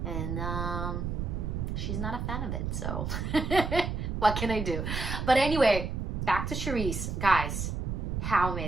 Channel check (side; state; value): right; noise; rumble, 2 dB below the sound